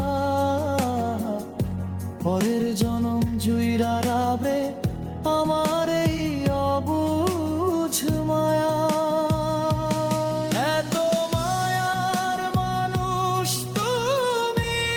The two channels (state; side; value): identical; both; correlation 1.00